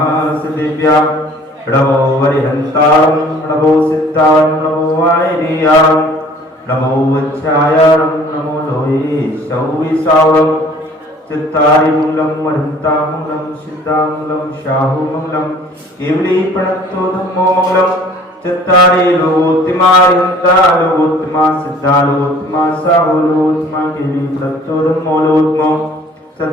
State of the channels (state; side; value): normal; both; correlation 0.52